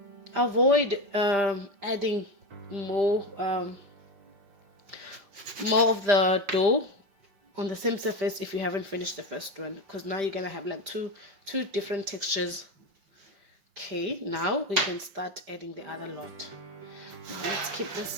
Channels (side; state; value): left; late; 5.0 ms